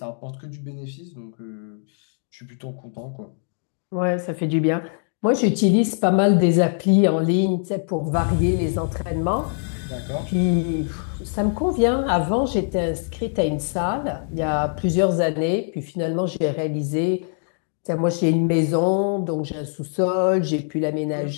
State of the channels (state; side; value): silent; right; 64 dB below the other